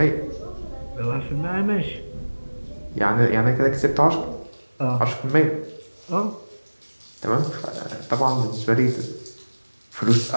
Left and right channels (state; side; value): inverted; both; correlation -1.00